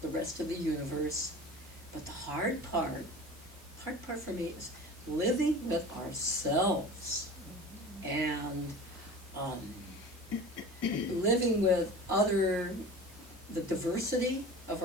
the rest of the universe, but the hard part for me is living with ourselves and living with other the diversity of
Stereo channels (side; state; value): both; normal; correlation 0.37